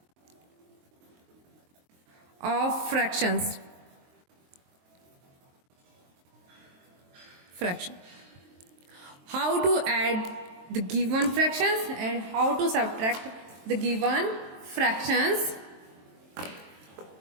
of fractions. How to add the given fractions and how to subtract the given fractions.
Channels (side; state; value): left; late; 23 ms